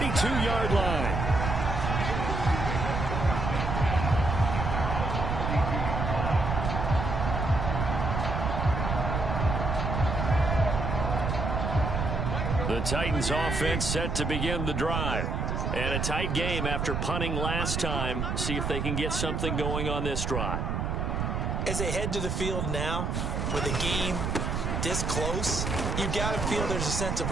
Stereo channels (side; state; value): right; noise; rumble, 1 dB below the sound